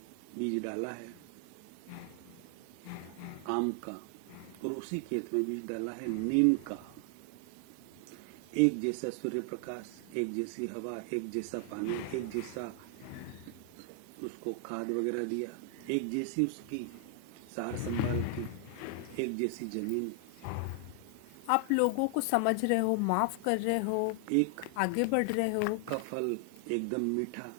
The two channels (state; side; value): different; both; correlation 0.00